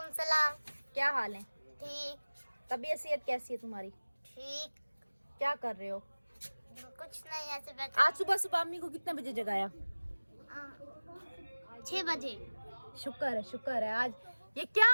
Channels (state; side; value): inverted; both; correlation -1.00